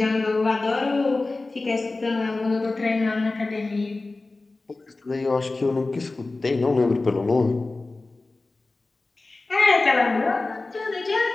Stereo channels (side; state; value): right; quieter; 3.3 dB